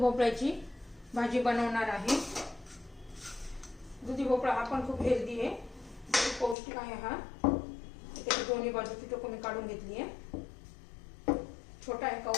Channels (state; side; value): drops out; right; at 6.6 s